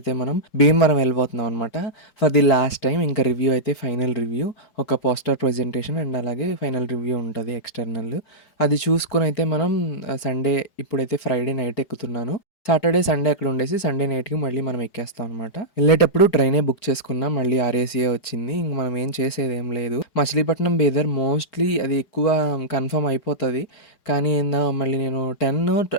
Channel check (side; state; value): right; late; 4.8 ms